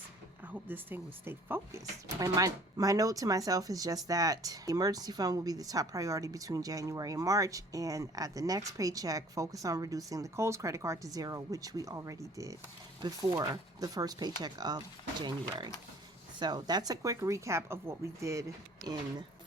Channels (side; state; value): both; normal; correlation 0.52